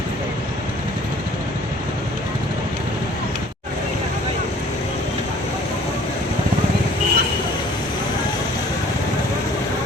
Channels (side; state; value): both; normal; correlation 0.53